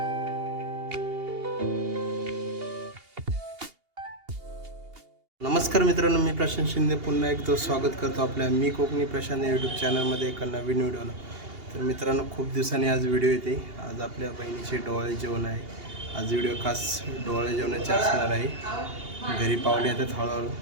मित्रांनो, मी प्रशांत शिंदे पुन्हा एकदा स्वागत करतो आपल्या मी कोकणी प्रशांत यूट्यूब चॅनलमध्ये एका नवीन व्हिडिओला. तर मित्रांनो, खूप दिवसांनी आज व्हिडिओ येते. आज आपल्या बहिणीचे डोळे जेवण आहे. आज व्हिडिओ खास डोळे जेवणाचे असणार आहे. घरी पाहुणे येतात हळूहळू.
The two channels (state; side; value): late; left; 2.8 ms